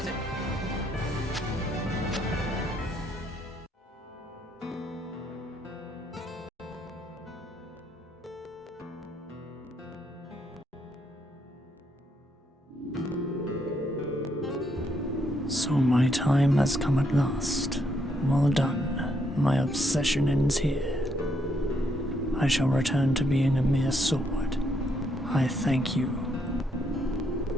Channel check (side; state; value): both; normal; correlation 0.74